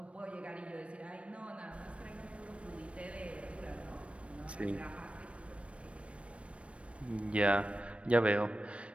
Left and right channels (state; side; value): late; left; 0.061 ms